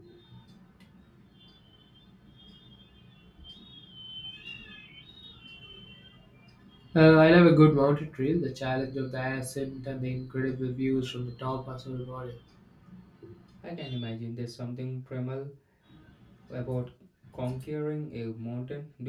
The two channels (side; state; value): both; identical; correlation 1.00